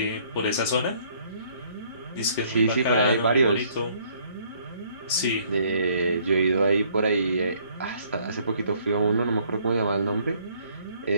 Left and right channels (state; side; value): inverted; both; correlation -0.63